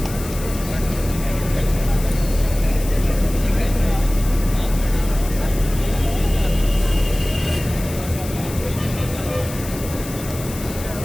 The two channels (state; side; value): noise; left; hiss, 13 dB below the sound